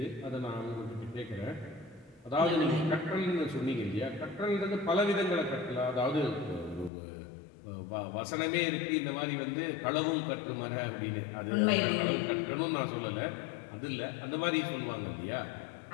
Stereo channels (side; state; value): right; drops out; at 6.9 s